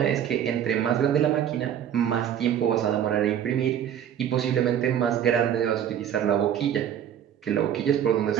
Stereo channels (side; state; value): left; quieter; 9.7 dB